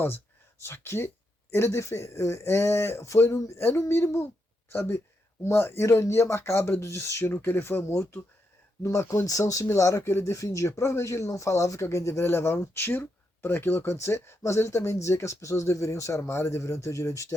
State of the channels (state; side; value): normal; both; correlation 0.82